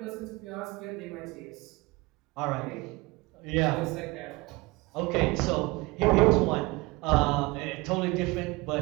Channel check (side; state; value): left; quieter; 23.2 dB